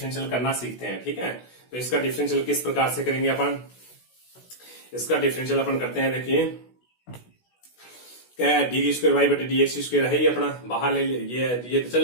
करना सीखते हैं, ठीक है। तो इसका डिफरेंशियल किस प्रकार से करेंगे अपन, इसका डिफरेंशियल अपन करते हैं, देखिए क्या डी स्क्वायर वाई बटे डी एक्स स्क्वायर है, ये अपना बाहर ले ये तो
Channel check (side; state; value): right; late; 16 ms